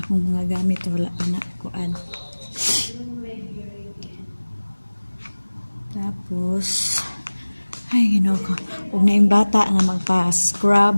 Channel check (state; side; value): inverted; both; correlation -1.00